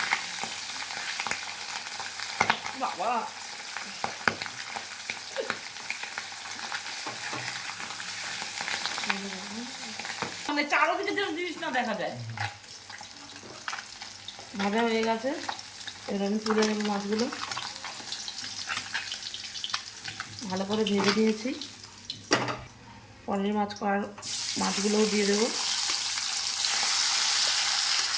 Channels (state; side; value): identical; both; correlation 1.00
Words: বাবা, মানে চারোদিকে যেন জিনিস না দেখা যায়। ভাজা হয়ে গেছে, এবার আমি তুলে নেব মাছগুলো। ভালো করে ভেজে দিয়েছি। পরের মাছগুলোও দিয়ে দেবো।